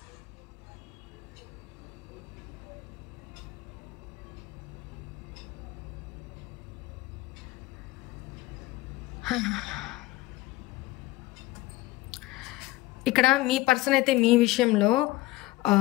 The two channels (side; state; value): right; quieter; 18.3 dB